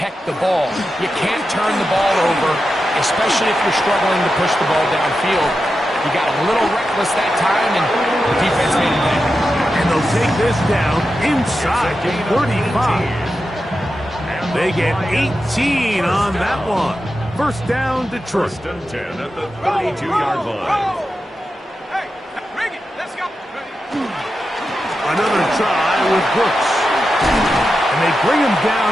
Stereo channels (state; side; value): normal; both; correlation 0.90